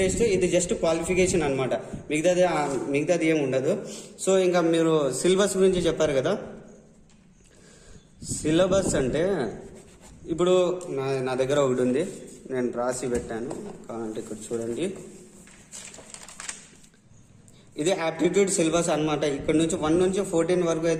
టెస్ట్, ఇది జస్ట్ క్వాలిఫికేషన్ అనమాట. మిగతాది ఏమి ఉండదు. సో ఇంకా మీరు సిలబస్ గురించి చెప్పారు కదా. సిలబస్ అంటే ఇప్పుడు నా దగ్గర ఒకటి ఉంది, నేను రాసి పెట్టాను కావాలంటే ఇక్కడ చూడండి. ఇది యాప్టిట్యూడ్ సిలబస్ అనమాట. ఇక్కడ నుంచి 1 నుంచి 14 వరకు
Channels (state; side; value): identical; both; correlation 1.00